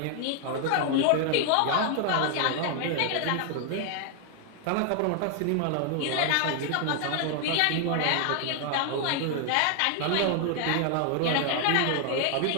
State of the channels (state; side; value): different; both; correlation 0.00